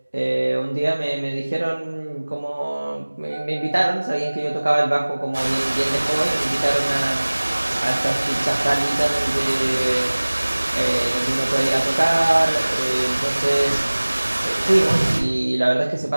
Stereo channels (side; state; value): both; inverted; correlation -1.00